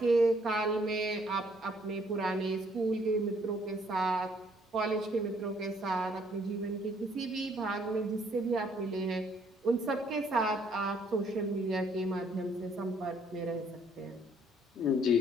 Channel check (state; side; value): normal; both; correlation 0.65